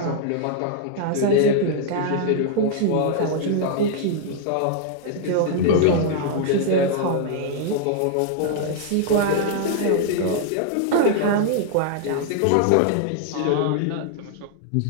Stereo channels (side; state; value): both; different; correlation 0.00